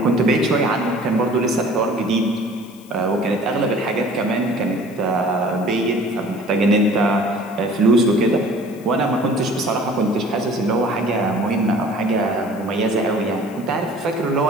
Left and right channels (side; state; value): left; noise; hiss, 25 dB below the sound